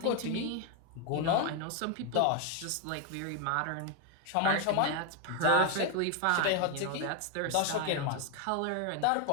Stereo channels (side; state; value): both; different; correlation 0.01